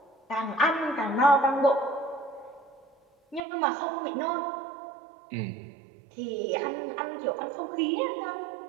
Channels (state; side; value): drops out; left; at 3.4 s